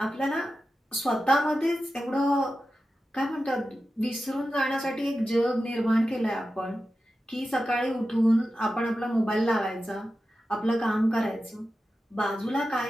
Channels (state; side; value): normal; both; correlation 0.92